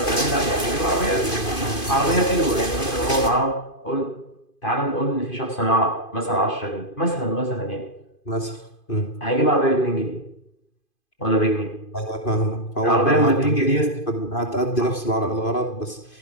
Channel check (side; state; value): right; late; 2.5 ms